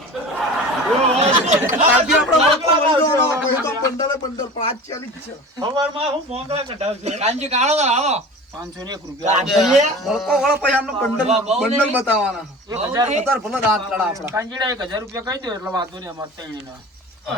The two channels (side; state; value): both; normal; correlation 0.37